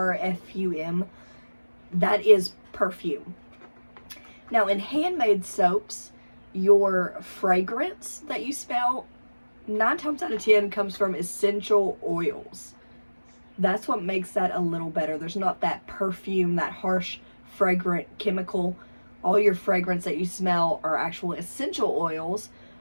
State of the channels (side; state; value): both; inverted; correlation -1.00